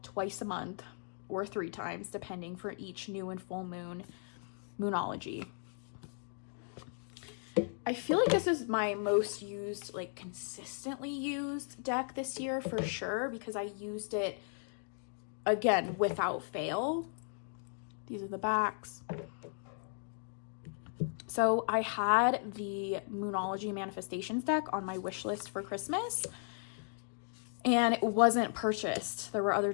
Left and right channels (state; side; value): silent; right; 54 dB below the other